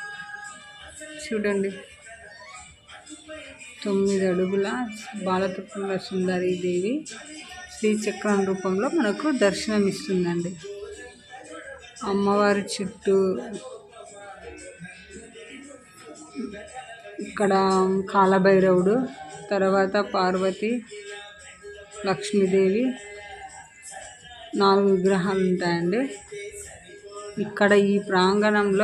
చూడండి. 9 అడుగుల బాలత్రిపుర సుందరి దేవి శ్రీచక్రం రూపంలో మనకు దర్శనమిస్తుందండి. అమ్మవారి చుట్టూ ఇక్కడ కాలభైరవుడు, తర్వాత పార్వతి, లక్ష్మీదేవి 4 విగ్రహాలు ఉంటాయండి. ఇక్కడ ఈ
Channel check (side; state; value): both; identical; correlation 1.00